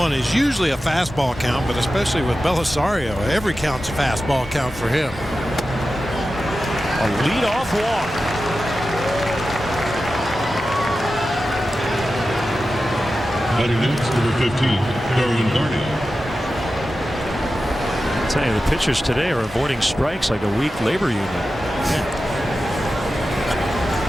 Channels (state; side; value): normal; both; correlation 0.93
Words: is usually a fastball count, but especially with Belisario, every count's a fastball count for him. A leadoff walk. Batting next, number 15, Darwin Barney. I'll tell you, the pitchers today are avoiding strikes like a weak labor union. Yeah.